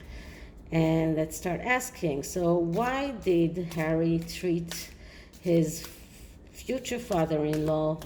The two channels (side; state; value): both; identical; correlation 1.00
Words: And let's start asking, so why did Harry treat his future father-in-law